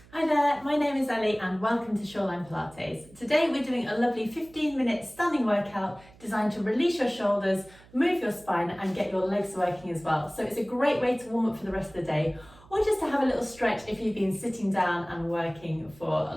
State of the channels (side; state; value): right; noise; hum, 25 dB below the sound